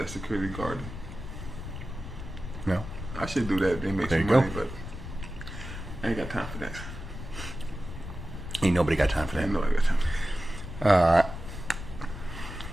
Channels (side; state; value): left; noise; rumble, 9 dB below the sound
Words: security guard. No. I should do that. They make There some you money, go. but I ain't got time for that. Ain't nobody got time for I that. know I got time.